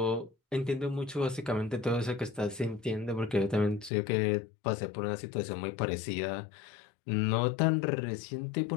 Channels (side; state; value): right; drops out; at 3.9 s